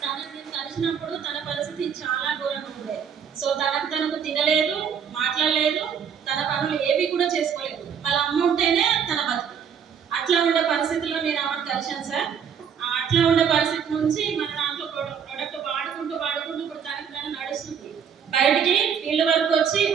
కలిసినప్పుడు తన పరిస్థితి చాలా ఘోరంగా ఉండే. సో తనకు తినలేదు, మాట్లాడలేదు, తన పనులు ఏవి కూడా చేసుకోలేదు. వాళ్ళ అమ్మ ఉంటేనే తన బతుకు. అట్లా ఉండే పరిస్థితుల్లో నేను ఆమెను కలిశాను సార్. అట్లా ఉండే పరిస్థితి నుంచి మన దాంట్లో ప్రొడక్ట్ వాడుకుంటూ ఇప్పుడు తనకు నడుస్తుంది. బయటికి ఫీల్డ్ వర్క్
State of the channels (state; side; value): quieter; left; 7.5 dB